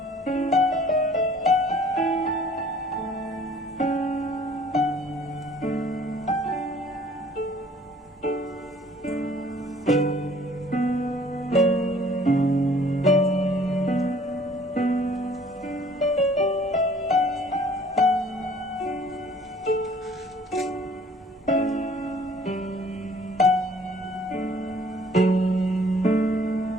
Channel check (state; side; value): normal; both; correlation 0.55